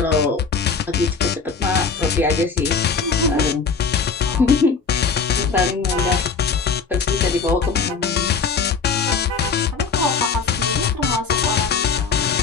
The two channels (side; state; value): right; quieter; 5.3 dB